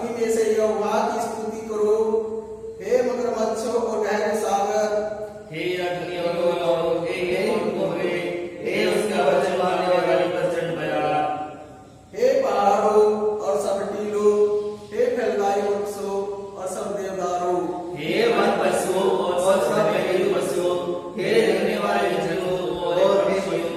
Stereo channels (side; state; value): both; identical; correlation 1.00